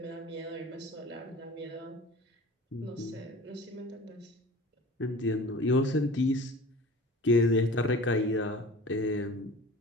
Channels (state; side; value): normal; both; correlation 0.40